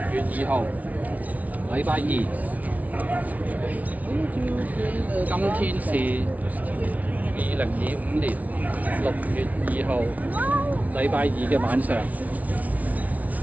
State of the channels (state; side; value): late; left; 0.071 ms